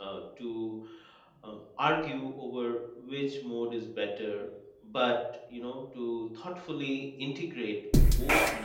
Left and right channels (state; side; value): identical; both; correlation 1.00